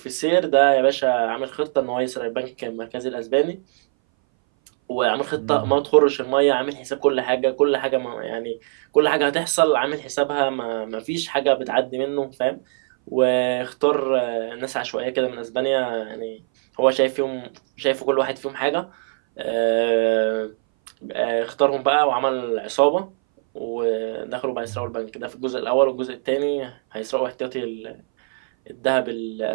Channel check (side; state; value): left; silent; 60 dB below the other